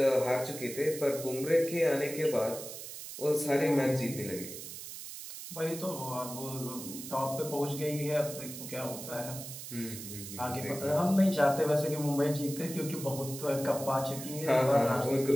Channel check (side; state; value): right; noise; hiss, 10 dB below the sound